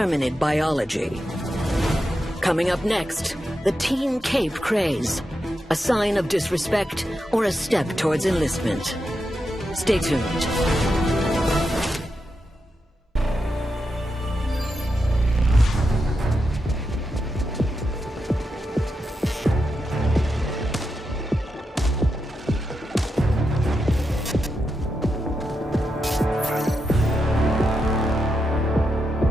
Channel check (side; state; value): both; normal; correlation 0.86